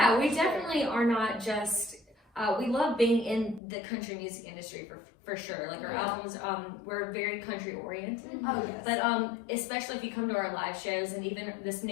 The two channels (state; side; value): drops out; right; at 3.6 s